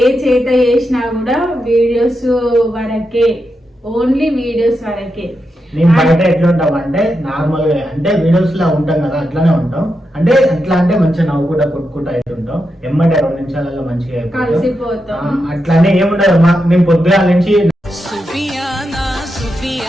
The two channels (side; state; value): both; normal; correlation 0.86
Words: చేత చేసినా కూడా వీడియోస్ వరకే, ఓన్లీ వీడియోస్ వరకే. మేము బయట ఎట్లా ఉంటాం అంటే నార్మల్ గా అంటే వీడియోస్ లా ఉంటాం కదా, అట్లానే ఉంటాం. అంటే ఎట్లా అంటే మంచిగా నవ్వుకుంటా కొట్టుకుంటా అయితే ఉంటాం. ఎమ్మటే 2 నిమిషాలలో మంచిగా కలిసిపోతాం. అట్లానే ఏముండదు. మేము పొద్దుగాల నుంచి